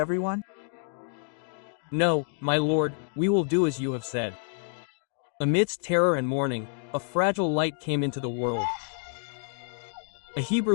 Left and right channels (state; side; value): silent; right; 58 dB below the other